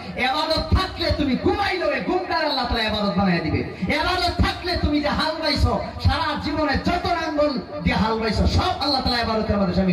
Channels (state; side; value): identical; both; correlation 1.00